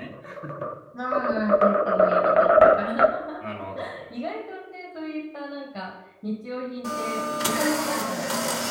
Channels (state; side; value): identical; both; correlation 1.00